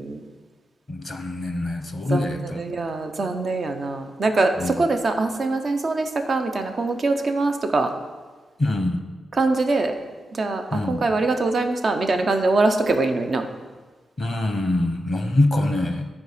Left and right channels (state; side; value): normal; both; correlation 0.89